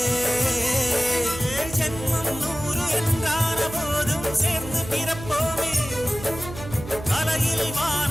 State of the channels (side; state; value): right; noise; hum, 12 dB below the sound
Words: ஜென்மம் 100 என்றான போதும் சேர்ந்து பிறப்போமே. கலையில்